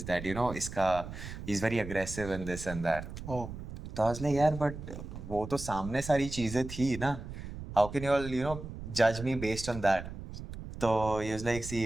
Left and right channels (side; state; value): right; noise; rumble, 10 dB below the sound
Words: that, you know इसका, he is very aggressive and this and that. ओ तो आई वाज लाइक यार बट वो तो सामने सारी चीजें थी ना, how can you all you know जज मी बेस्ड ऑन दैट। तो he was like, see,